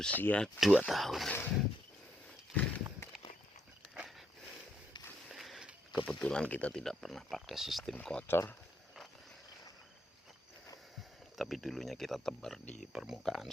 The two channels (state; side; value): normal; both; correlation 0.75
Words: 2 tahun. Kebetulan kita tidak pernah pakai sistem kocor, tapi dulunya kita tebar di permukaan